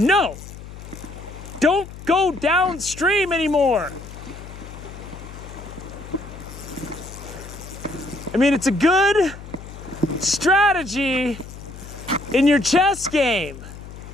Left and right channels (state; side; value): noise; left; hum, 14 dB below the sound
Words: Don't go downstream anymore. I mean, it's a good strategy in your chess game.